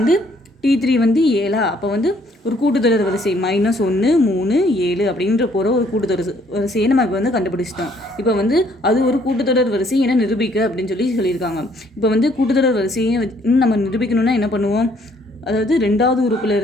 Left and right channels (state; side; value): normal; both; correlation 0.64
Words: T3 வந்து 7. அப்போ வந்து ஒரு கூட்டுத்தொடர் வரிசை -1 3 7 அப்படின்ற போகிற ஒரு கூட்டுத்தொடர் வரிசையை நம்ம இப்போ வந்து கண்டுபிடிச்சிட்டோம். இப்போ வந்து அது ஒரு கூட்டுத்தொடர் வரிசை என நிரூபிக்க அப்படின்னு சொல்லியிருக்காங்க. இப்போ வந்து கூட்டுத்தொடர் வரிசையை நம்ம நிரூபிக்கணும்னா என்ன பண்ணுவோம், அதாவது ரெண்டாவது